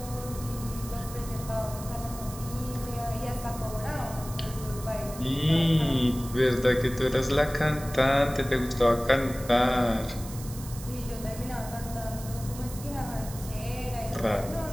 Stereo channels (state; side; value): noise; right; hiss, 14 dB below the sound